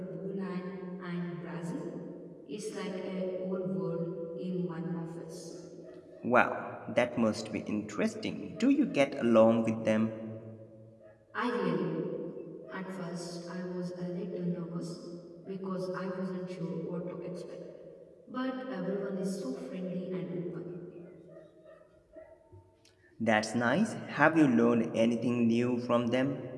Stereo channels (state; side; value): identical; both; correlation 1.00